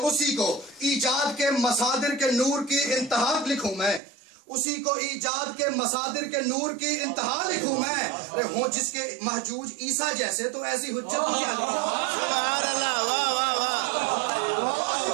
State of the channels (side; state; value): left; drops out; at 4.0 s